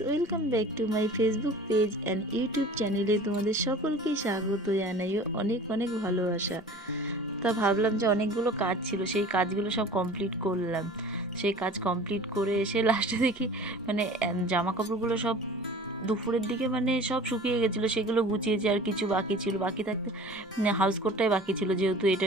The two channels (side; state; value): both; normal; correlation 0.43